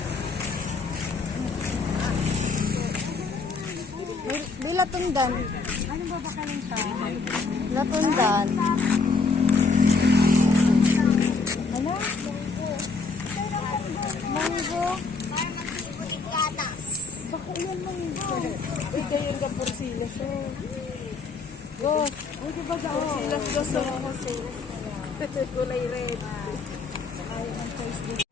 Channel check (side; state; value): right; quieter; 4.3 dB